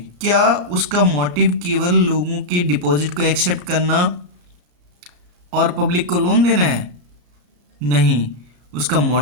क्या उसका मोटिव केवल लोगों के डिपॉजिट को एक्सेप्ट करना और पब्लिक को लोन देना है? नहीं, उसका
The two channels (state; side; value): late; left; 33 ms